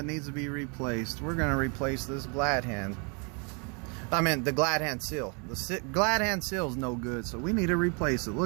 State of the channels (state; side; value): quieter; left; 35.0 dB